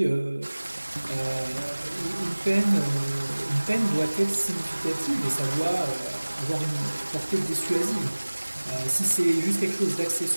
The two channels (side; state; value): both; inverted; correlation -1.00